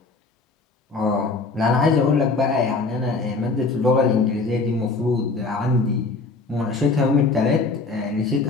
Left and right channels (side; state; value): right; quieter; 3.8 dB